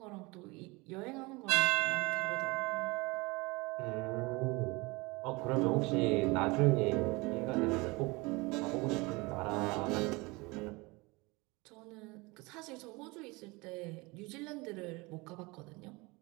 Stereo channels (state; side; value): quieter; left; 24.8 dB